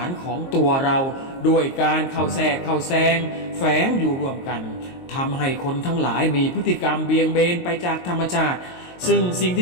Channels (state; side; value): late; right; 22 ms